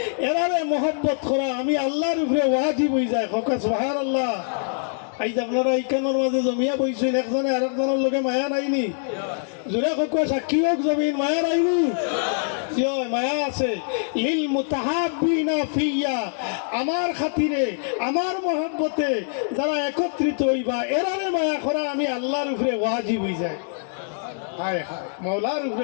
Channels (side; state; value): right; silent; 63 dB below the other